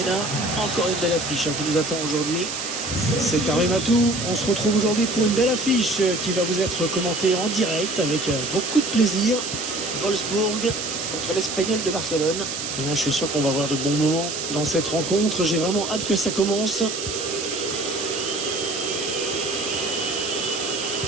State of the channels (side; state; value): right; noise; hiss, 5 dB below the sound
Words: Encore une belle affiche qui nous attend aujourd'hui. C'est Karim Atou, on se retrouve aujourd'hui pour une belle affiche qui va vous être commentée en direct avec beaucoup de plaisir. Wolfsburg contre l'Espagnol de Barcelone. Je suis sûr qu'on va avoir de bons moments dans cette rencontre, j'ai vraiment hâte que ça commence.